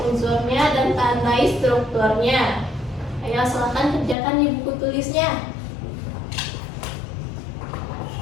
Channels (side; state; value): right; drops out; at 4.2 s